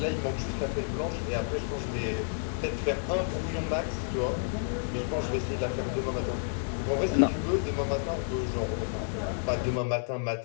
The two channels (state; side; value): silent; right; digital silence